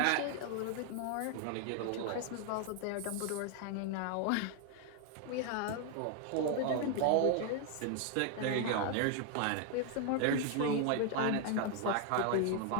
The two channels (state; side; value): different; both; correlation 0.00